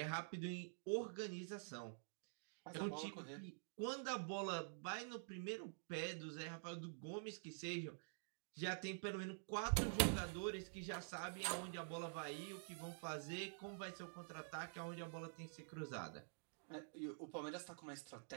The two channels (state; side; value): silent; left; digital silence